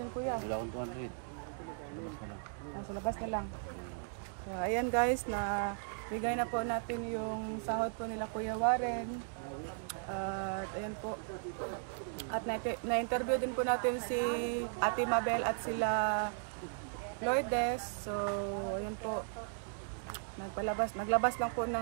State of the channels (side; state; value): left; silent; digital silence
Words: kuya. Wala akong 200. Sa labas na lang. So, ayan guys, na bigay na po natin yung sahod po nila Kuya Warren. At ayan po. At na-interview din po natin si Ate Mabel at sila Lourdes. So, ayan po. Naglabas lang po